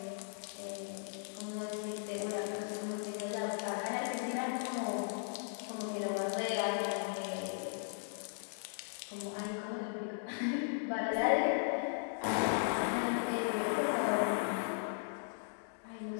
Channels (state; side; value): silent; right; digital silence